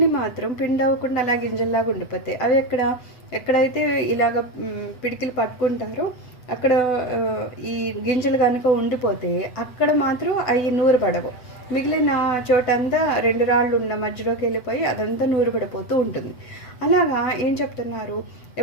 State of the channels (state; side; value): late; right; 8.0 ms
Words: మాత్రం పిండి అవ్వకుండా అలా గింజల్లాగా ఉండిపోతాయి. అవి ఎక్కడైతే ఇలాగ పిడికిలు పట్టుకుంటారో అక్కడ ఈ గింజలు కనుక ఉండిపోతే అక్కడ మాత్రం అవి నూరుపడవు. మిగిలిన చోటంతా 2 రాళ్ళు ఉన్న మధ్యలోకి వెళ్ళిపోయి అదంతా నూరుపడిపోతూ ఉంటుంది. అలాగా ఏం చెప్తున్నారు,